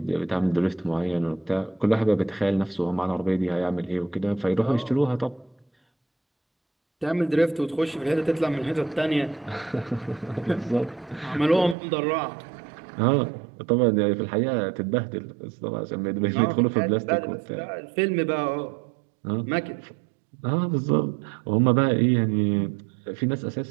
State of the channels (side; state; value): left; drops out; at 11.8 s